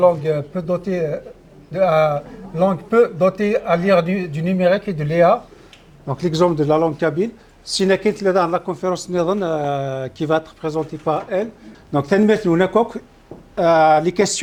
peu dotées langue peu dotée à l'ère du numérique et de l'IA. Donc l'exemple de la langue kabyle. Si nous dans la conférence qui va être présentée par elle. Donc les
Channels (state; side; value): identical; both; correlation 1.00